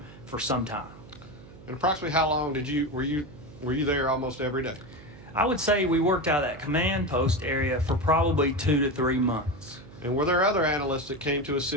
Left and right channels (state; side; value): noise; right; hum, 19 dB below the sound